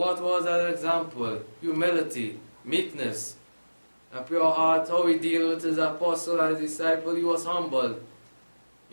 was that example? Humility, meekness, a pure heart, how he dealt with his apostle and his disciple. He was humble.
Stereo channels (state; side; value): inverted; both; correlation -1.00